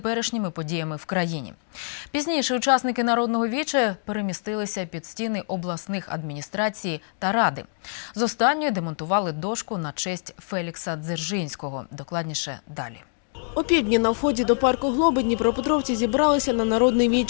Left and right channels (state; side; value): silent; right; digital silence